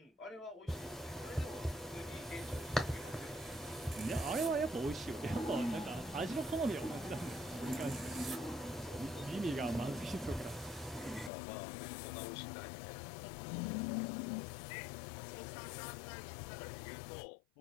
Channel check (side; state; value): right; drops out; at 11.3 s